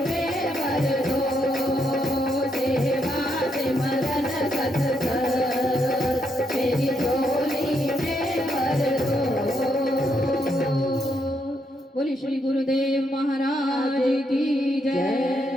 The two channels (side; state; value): both; normal; correlation 0.78